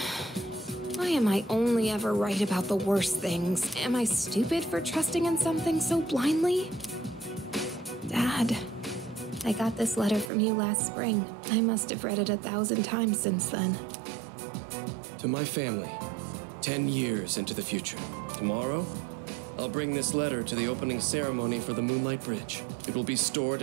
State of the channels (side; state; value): left; drops out; at 10.3 s